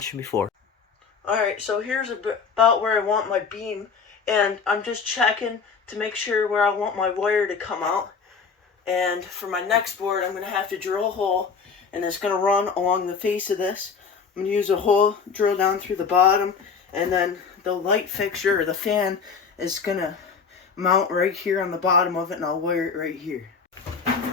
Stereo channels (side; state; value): right; quieter; 5.7 dB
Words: before. Alright, so here's about where I want my beam, and I'm just checking to make sure where I want my wire to come out. And for my next board, I'm going to have to drill a hole, and it's going to run along the face of this. I'm going to use a hole, drill down through the bottom, and then the light fixture, or the fan, is going to mount right here on the bottom of it, and I'll wire it right here.